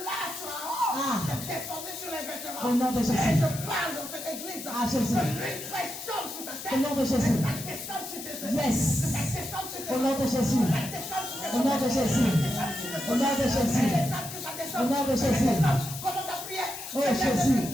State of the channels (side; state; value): left; noise; hiss, 10 dB below the sound